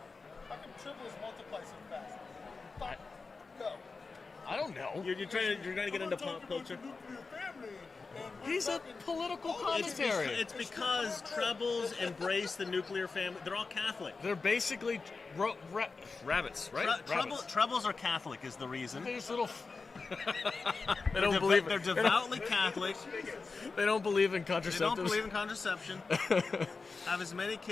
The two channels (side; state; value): right; quieter; 4.3 dB